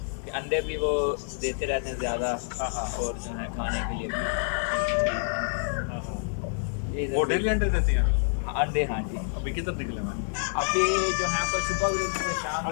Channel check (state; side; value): silent; right; digital silence